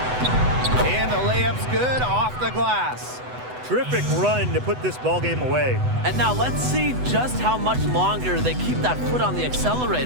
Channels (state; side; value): late; left; 8.0 ms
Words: And the layup's good off the glass. Terrific run to put this ball game away. And now let's see just how much longer they keep that foot on the